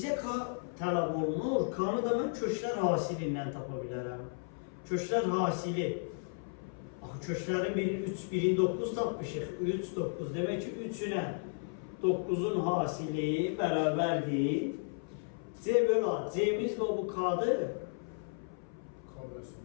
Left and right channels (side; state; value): right; silent; 55 dB below the other